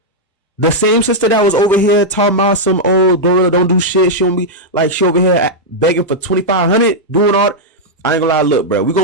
The same sister that was over here talking about some old Glorilla don't do shit. She don't be like, she over here begging for $2,500, doing all. I ain't gonna lie, look, bro. We're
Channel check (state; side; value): normal; both; correlation -0.05